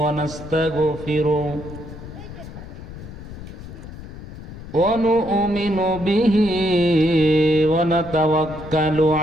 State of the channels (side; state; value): left; noise; rumble, 13 dB below the sound